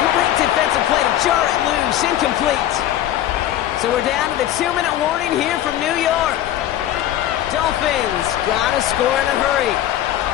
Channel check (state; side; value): quieter; right; 12.4 dB